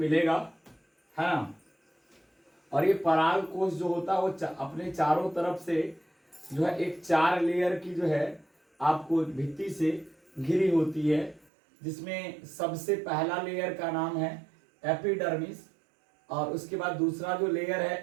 है ना। और ये पराग कोश जो होता है वो अपने चारों तरफ से जो है एक 4 लेयर की जो है आपको भित्ति से घिरी होती है, जिसमें सबसे पहला लेयर का नाम है एपिडर्मिस, और उसके बाद दूसरा जो लेयर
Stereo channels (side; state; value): left; drops out; at 11.5 s